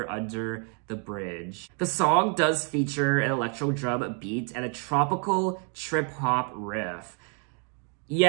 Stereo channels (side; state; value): left; quieter; 40.0 dB